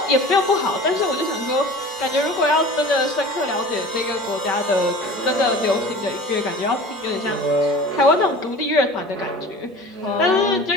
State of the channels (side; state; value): both; normal; correlation 0.40